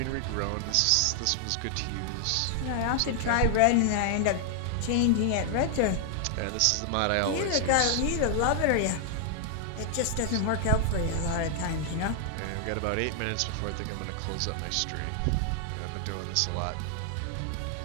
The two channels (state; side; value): different; both; correlation 0.00